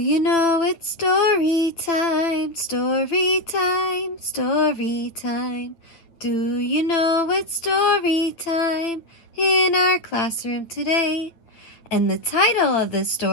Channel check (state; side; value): late; right; 9.2 ms